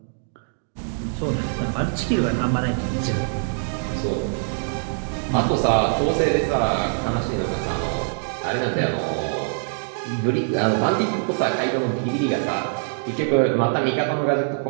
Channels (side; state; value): left; silent; digital silence